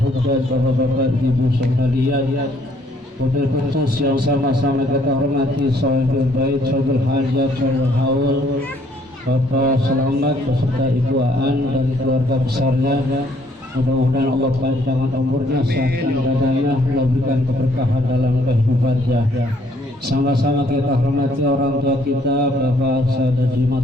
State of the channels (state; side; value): normal; both; correlation 0.65